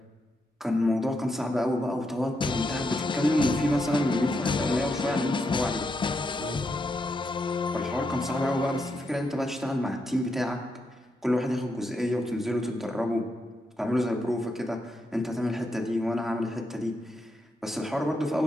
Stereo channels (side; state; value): both; normal; correlation 0.82